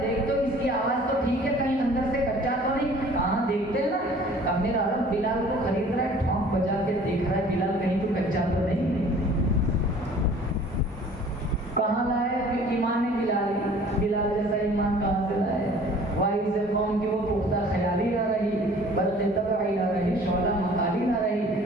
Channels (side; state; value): both; normal; correlation 0.50